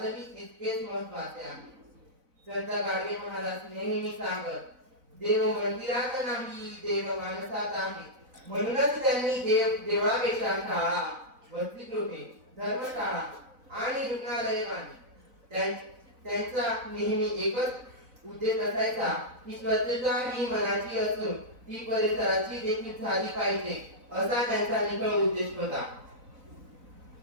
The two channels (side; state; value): left; late; 4.0 ms